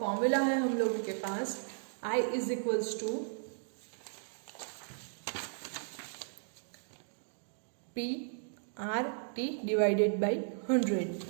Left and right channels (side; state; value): left; silent; digital silence